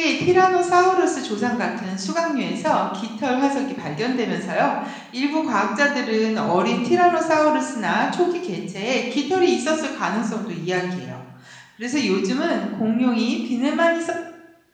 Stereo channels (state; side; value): identical; both; correlation 1.00